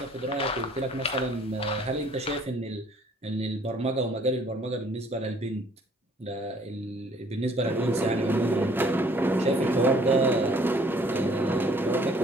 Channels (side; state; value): both; normal; correlation 0.59